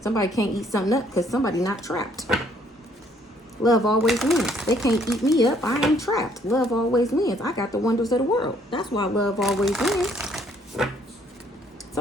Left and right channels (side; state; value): both; normal; correlation 0.65